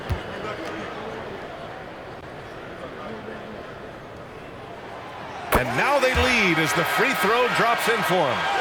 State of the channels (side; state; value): both; identical; correlation 1.00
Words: And now they lead as the free throw drops in for them.